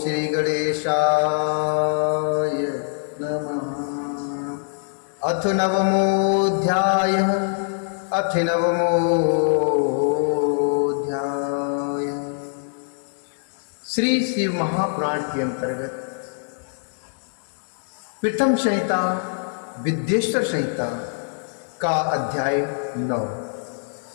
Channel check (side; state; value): right; silent; digital silence